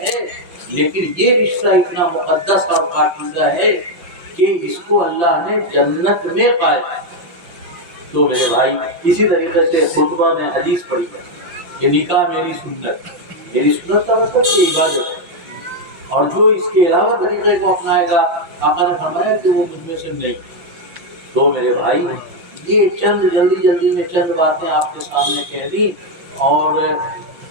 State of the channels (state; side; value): late; left; 5.9 ms